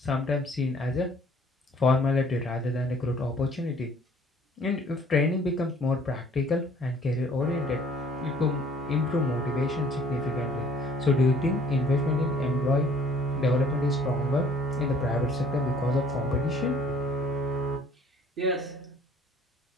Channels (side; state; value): both; normal; correlation 0.56